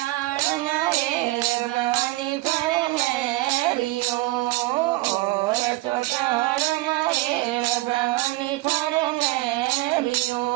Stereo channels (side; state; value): left; quieter; 19.7 dB